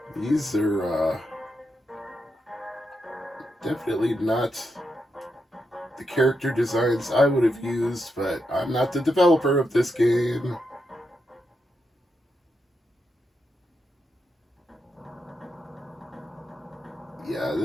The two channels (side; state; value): both; normal; correlation 0.84